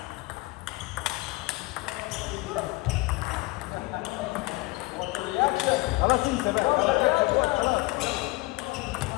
خلاص انت بقى خلاص.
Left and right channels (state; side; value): quieter; right; 22.6 dB